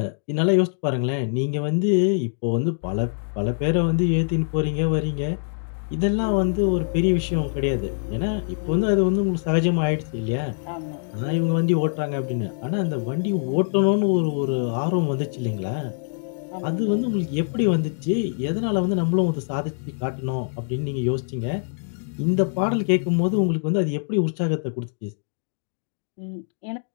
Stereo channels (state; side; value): silent; right; digital silence